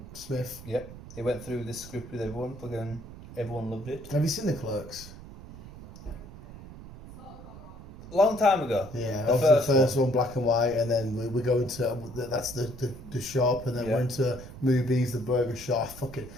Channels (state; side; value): noise; right; rumble, 15 dB below the sound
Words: Smith. Yep, he went through this script with everyone. Fucking everyone loved it. Have you seen the Clerks? Long time ago. Yeah, the first one, black and white, and then we go into that's the shop, and then we're into movies, the burger shop. Fucking,